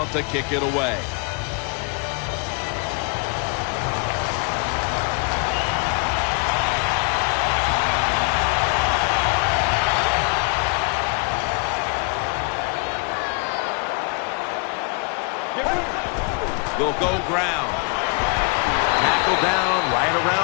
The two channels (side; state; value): right; quieter; 34.3 dB